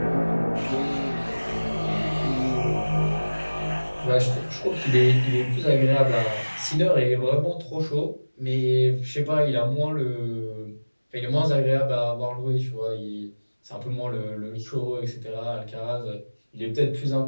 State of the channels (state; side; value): inverted; both; correlation -1.00